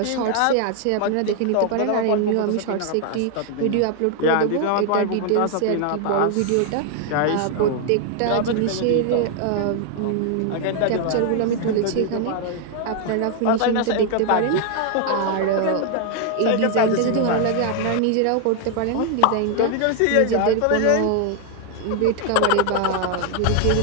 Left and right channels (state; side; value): different; both; correlation 0.00